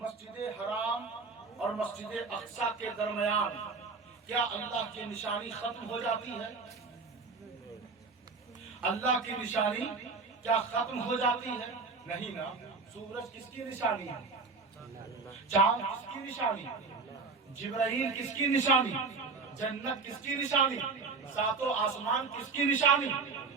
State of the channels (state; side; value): quieter; left; 4.4 dB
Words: حرام اور مسجد اقصی کے درمیان کیا اللہ کی نشانی ختم ہو جاتی ہے؟ اللہ کی نشانی کیا ختم ہو جاتی ہے؟ نہیں نا۔ سورج کس کی نشانی ہے؟ چاند کس کی نشانی؟ جبرائیل کس کی نشانی؟ جنت کس کی نشانی؟ ساتوں آسمان کس کی نشانی؟